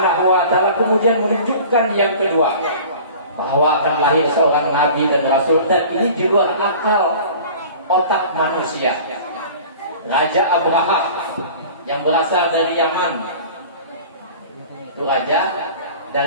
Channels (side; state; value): both; inverted; correlation -0.42